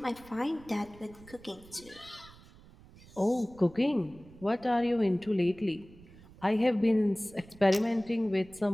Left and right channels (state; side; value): noise; right; rumble, 22 dB below the sound